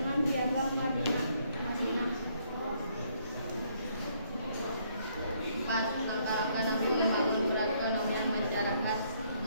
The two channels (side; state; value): both; inverted; correlation -0.69